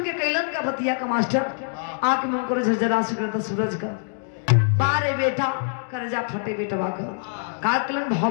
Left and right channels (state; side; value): silent; right; digital silence